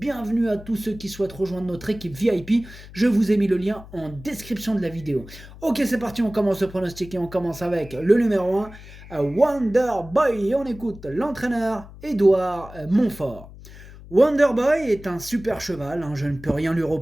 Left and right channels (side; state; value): left; noise; hum, 17 dB below the sound